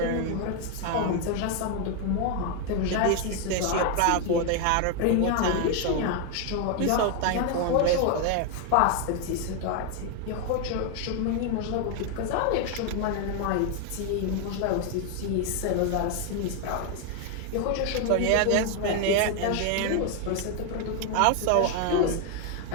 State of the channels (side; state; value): both; different; correlation 0.01